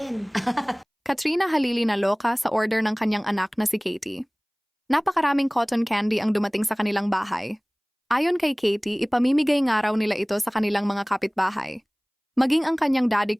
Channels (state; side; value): identical; both; correlation 1.00